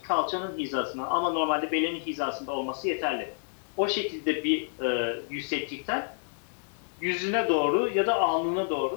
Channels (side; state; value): right; silent; 59 dB below the other